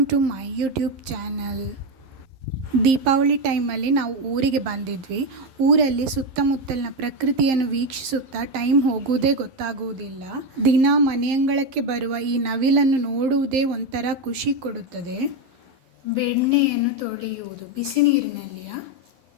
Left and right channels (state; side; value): late; left; 11 ms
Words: to my YouTube channel. Deepavali ಟೈಮಲ್ಲಿ ನಾವು ಊರಿಗೆ ಬಂದಿದ್ವಿ. ಊರಲ್ಲಿ ಸುತ್ತಮುತ್ತಲಿನ ಪ್ರಕೃತಿಯನ್ನು ವೀಕ್ಷಿಸುತ್ತಾ ಟೈಮ್ ಹೋಗುವುದೇ ಗೊತ್ತಾಗುವುದಿಲ್ಲ. ದಿನ ಮನೆಯಂಗಳಕ್ಕೆ ಬರುವ ಈ ನವಿಲನ್ನು ನೋಡುವುದೇ ಒಂಥರ ಖುಷಿ ಕೊಡುತ್ತದೆ. ಬೆಣ್ಣೆಯನ್ನು ತೊಳೆಯುವುದು ಬಿಸಿ ನೀರಿನಲ್ಲಿಯ